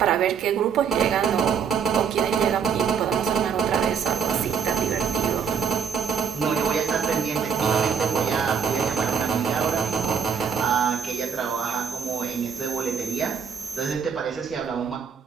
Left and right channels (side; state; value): left; quieter; 6.7 dB